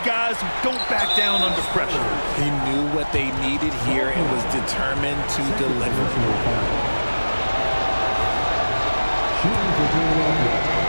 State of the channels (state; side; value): inverted; both; correlation -1.00